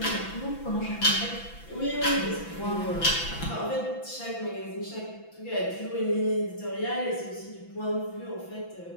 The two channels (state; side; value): late; right; 6.0 ms